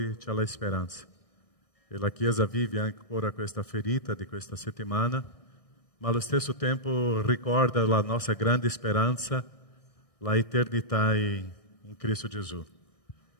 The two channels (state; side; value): late; right; 1.6 ms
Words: c'è la speranza. E la Chiesa vive ancora questa ferita di questa settimana, ma allo stesso tempo ricorda la nostra grande speranza, la eternità in Cristo Gesù.